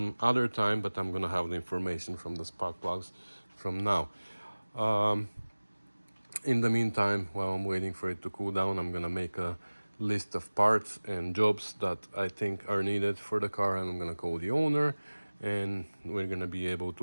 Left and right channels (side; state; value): both; inverted; correlation -1.00